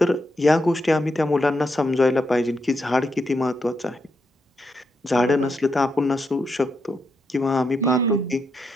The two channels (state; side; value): normal; both; correlation 0.82